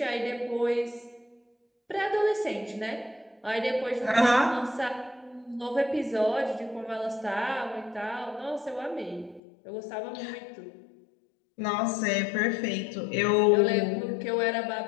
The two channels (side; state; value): right; drops out; at 9.4 s